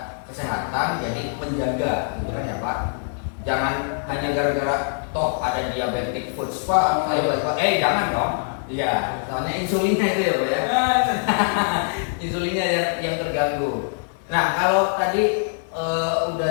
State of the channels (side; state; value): right; silent; digital silence